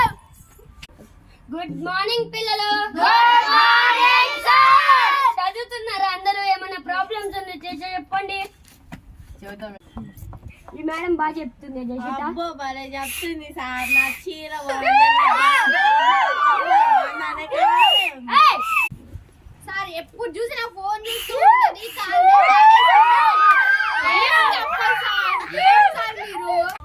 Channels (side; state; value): both; identical; correlation 1.00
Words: గుడ్ మార్నింగ్ పిల్లలు. Good morning sir. చదువుతున్నారా అందరూ? ఏమైనా ప్రాబ్లమ్స్ ఉంటే చెప్పండి. ఈ మేడం బాగా చెప్తుంది. అబ్బో భలే చెప్తుంది సార్. నా చీర సార్ ఎప్పుడు చూసినా ఫోన్ చూస్తూ